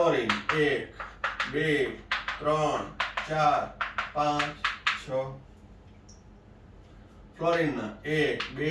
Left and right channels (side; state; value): both; identical; correlation 1.00